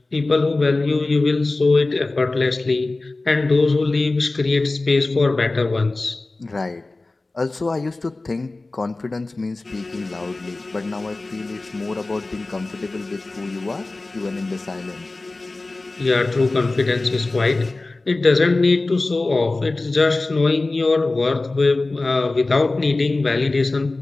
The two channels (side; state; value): right; quieter; 3.2 dB